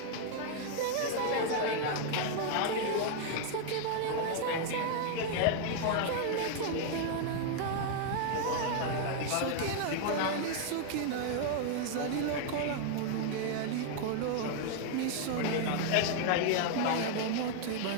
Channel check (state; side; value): different; both; correlation 0.00